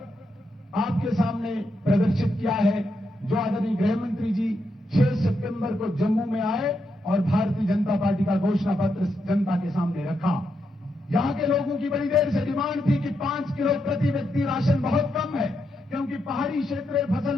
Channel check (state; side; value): normal; both; correlation 0.82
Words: आपके सामने प्रदर्शित किया है, जो आदरणीय गृह मंत्री जी 6 सितंबर को जम्मू में आए और भारतीय जनता पार्टी का घोषणा पत्र जनता के सामने रखा। यहां के लोगों की बड़ी देर से डिमांड थी कि 5 किलो प्रति व्यक्ति राशन बहुत कम है, क्योंकि पहाड़ी क्षेत्र में